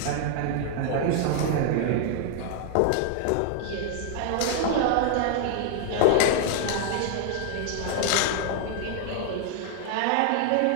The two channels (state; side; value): different; both; correlation 0.00